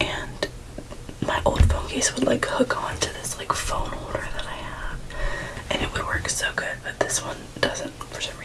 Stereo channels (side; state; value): both; identical; correlation 1.00